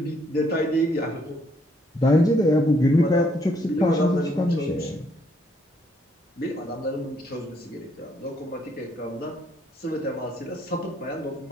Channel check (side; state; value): both; normal; correlation 0.70